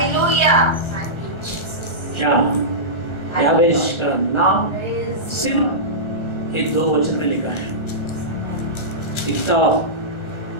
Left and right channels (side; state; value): right; late; 1.3 ms